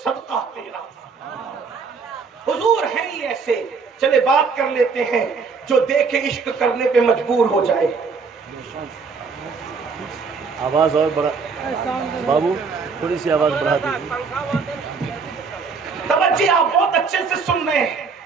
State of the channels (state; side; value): quieter; left; 5.1 dB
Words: صدقہ تیرا. حضور ہیں ہی ایسے. چلے بات کر لیتے ہیں, جو دیکھے عشق کرنے پہ مجبور ہو جائے. آواز اور بڑھا بابو, تھوڑی سی آواز بڑھا دیجیے. توجہ آپ بہت اچھے سے سن رہے ہیں.